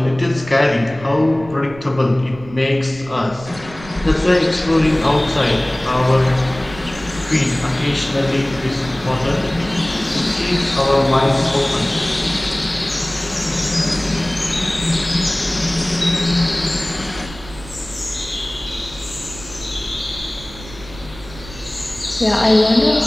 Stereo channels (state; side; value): noise; right; rumble, 17 dB below the sound